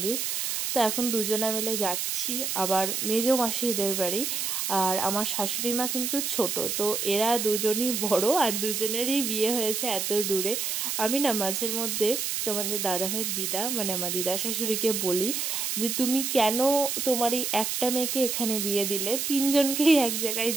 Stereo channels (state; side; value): noise; right; hiss, 1 dB below the sound